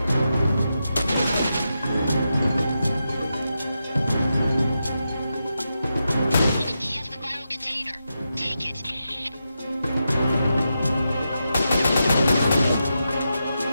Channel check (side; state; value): both; inverted; correlation -0.87